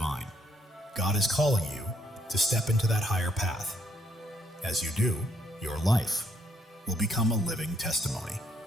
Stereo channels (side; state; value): both; normal; correlation 0.71